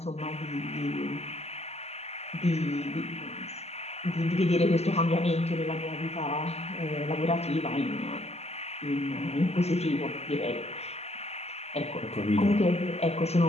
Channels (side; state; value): right; late; 0.30 ms